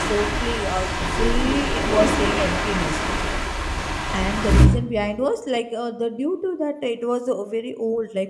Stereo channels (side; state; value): both; identical; correlation 1.00